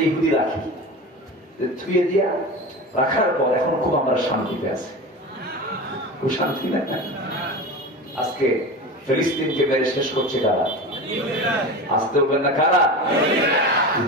ইহুদি রাখি। থুয়ে দিয়া রাখার পর এখন খুব আমরা শান্তিতে আছি। খুব শান্তি না? আজকে ফিলিস্তিনকে মেরে শেষ করছে কারা? আসতে বলবেন না কারা?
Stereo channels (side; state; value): both; normal; correlation 0.29